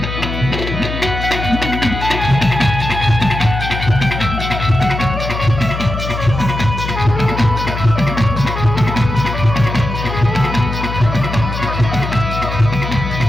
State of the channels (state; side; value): noise; left; hum, 5 dB below the sound